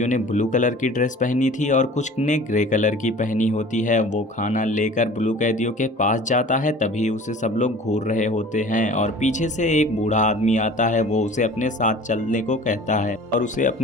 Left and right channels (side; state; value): both; normal; correlation 0.44